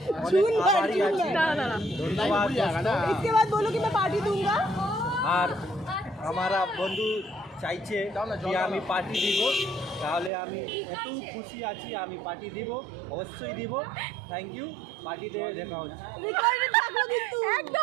অনেক আভারী আছি। ধন্যবাদ আর আমার বন্ধু চাইছে যে আমি পার্টি দিব, তাহলে আমি এত খুশি আছি, আমি পার্টি দিব, অবশ্যই দিব। Thank you. পার্টিতে দেখা হচ্ছে।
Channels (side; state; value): left; drops out; at 10.3 s